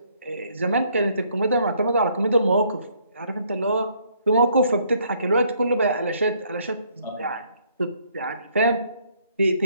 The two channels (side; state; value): both; inverted; correlation -0.66